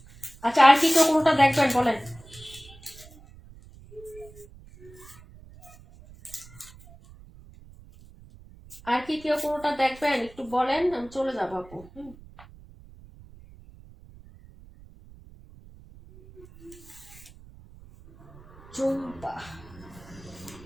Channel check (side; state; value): right; noise; rumble, 21 dB below the sound